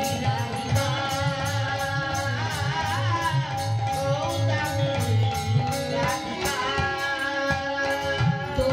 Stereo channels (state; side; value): identical; both; correlation 1.00